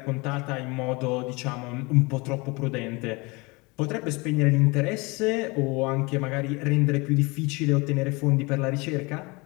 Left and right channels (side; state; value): right; quieter; 26.2 dB